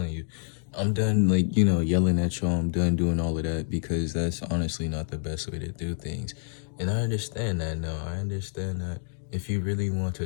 you. I'm done, like, you know, yelling at y'all. I'm done doing all of that because that's honestly not the best way to do things. And I understand that now. I understand that if you really want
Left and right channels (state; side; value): silent; right; digital silence